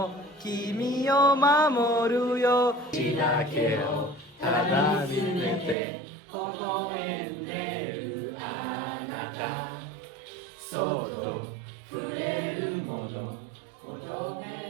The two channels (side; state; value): left; drops out; at 5.8 s